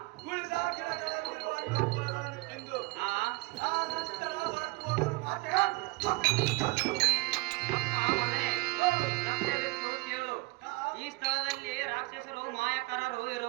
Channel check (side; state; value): left; quieter; 23.7 dB